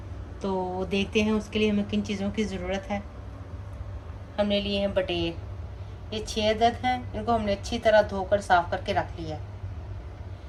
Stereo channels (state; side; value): identical; both; correlation 1.00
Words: तो देखते हैं उसके लिए हमें किन चीज़ों की ज़रूरत है। हमने लिए हैं बटेर, ये 6 अदद हैं। इनको हमने अच्छी तरह धोकर साफ़ करके रख लिया है।